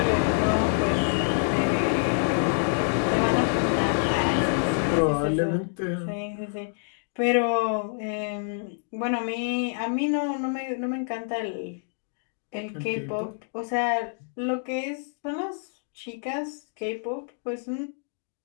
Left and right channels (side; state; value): right; silent; digital silence